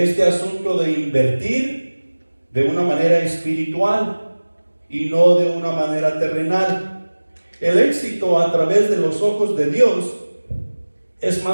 asunto de invertir de una manera espiritual y no de una manera terrenal. El éxito a través de los ojos de Dios es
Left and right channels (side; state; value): both; inverted; correlation -1.00